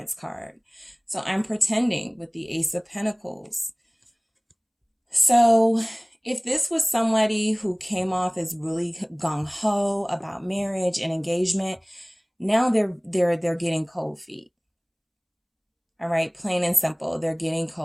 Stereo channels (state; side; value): identical; both; correlation 1.00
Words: card. So I'm pretending with the Ace of Pentacles. So if this was somebody who came off as really gung-ho about marriage and engagement, now they're getting cold feet. All right, plain and simple. They're getting